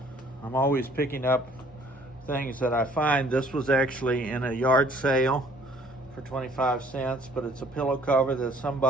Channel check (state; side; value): normal; both; correlation 0.58